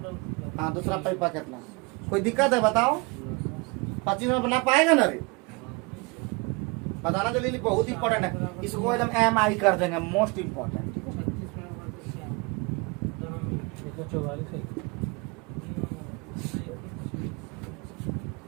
हाँ, दूसरा पाइपा कितना? कोई दिक्कत है बताओ? 25 में बना पाएगा ना रे? बताना जल्दी, बहुत इंपॉर्टेंट है। इसको एकदम MI कर देंगे, मोस्ट इम्पोर्टेंट। ठीक है, 44 है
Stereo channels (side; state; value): left; quieter; 28.9 dB